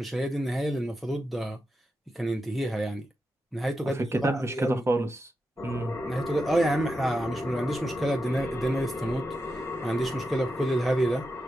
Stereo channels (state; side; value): normal; both; correlation 0.88